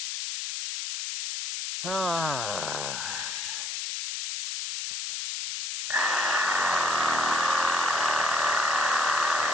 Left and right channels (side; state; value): left; noise; hiss, 4 dB below the sound